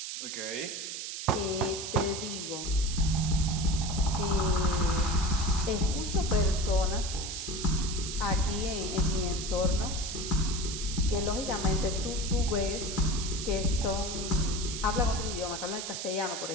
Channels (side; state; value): right; noise; hiss, 6 dB below the sound